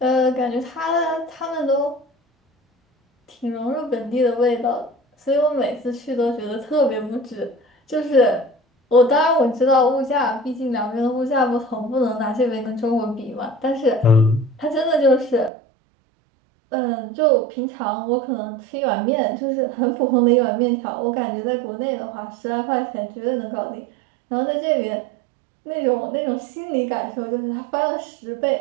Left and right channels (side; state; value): left; drops out; at 15.5 s